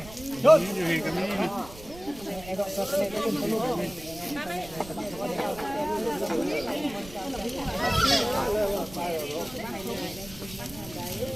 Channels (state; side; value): noise; right; rumble, 17 dB below the sound